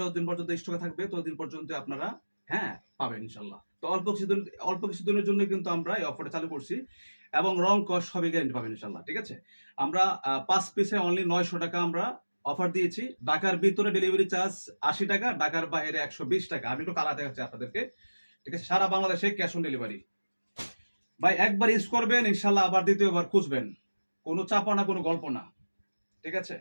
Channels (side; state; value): both; inverted; correlation -1.00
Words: যতদিন পর্যন্ত স্টকে থাকবে ততদিন পর্যন্ত আপনারা হ্যাঁ, পাবেন ইনশাআল্লাহ। তো অল্প কিছুদিনের জন্য কিন্তু আমরা এই অফারটা চালু করছি এবং রং কস সবই গ্যারান্টি পাবেন ইনশাআল্লাহ। ঠিক আছে? আমরা ৫ পিসে অনলি ৳৯০০ আমরা অফার দিয়েছি। ঢাকার ভিতরে ডেলিভারি চার্জ ৳৮০, ঢাকার বাইরে ৳১২০। আমি একটু কালার দেখাচ্ছি আপনাদেরকে। ঠিক আছে? সারা বাংলাদেশে ক্যাশ অন ডেলিভারি। ভাই একবার ইউজ করবেন ইনশাআল্লাহ আবার দ্বিতীয়বার খুঁজবেন। কোনো চাপা না, কোনো গল্প না। ঠিক আছে?